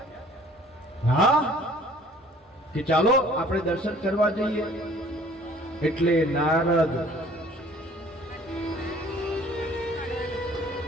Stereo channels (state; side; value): normal; both; correlation 0.54